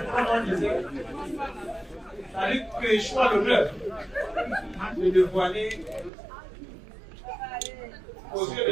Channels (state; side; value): drops out; left; at 6.1 s